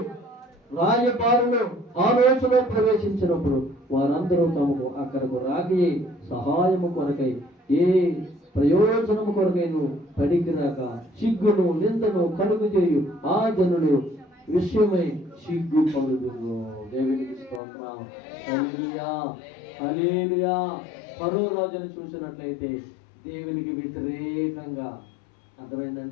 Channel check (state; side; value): drops out; right; at 17.6 s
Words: రాయబారులు ఆలోచనలో ప్రవేశించినప్పుడు వారందరూ తమకు అక్కడకు రాకి సహాయము కొరకై ఏ ప్రయోజనము కొరకైను పడికిరాక సిగ్గును నిందను కలుగు చేయు ఆ జనులు విషయమై సిగ్గు పలుదురు. దేవునికి స్తోత్రం. హల్లెలూయా, హల్లెలూయా. ఫరో రాజును చూసినట్లయితే దేవునికి వ్యతిరేకంగా,